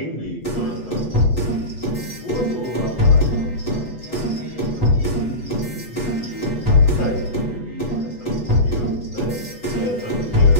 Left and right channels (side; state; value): right; late; 8.1 ms